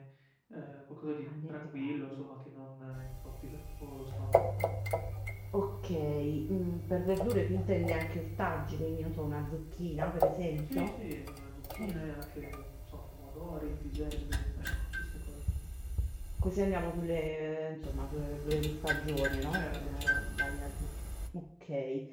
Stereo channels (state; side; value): identical; both; correlation 1.00